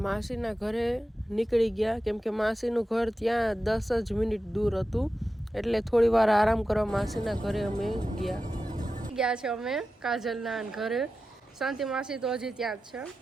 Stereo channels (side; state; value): both; normal; correlation 0.92